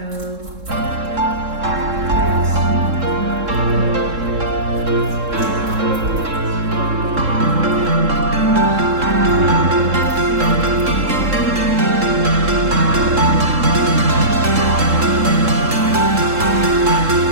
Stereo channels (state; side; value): late; left; 3.7 ms